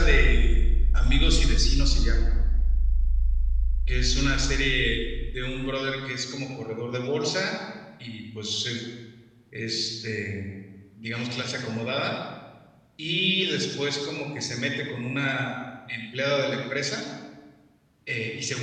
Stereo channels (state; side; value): identical; both; correlation 1.00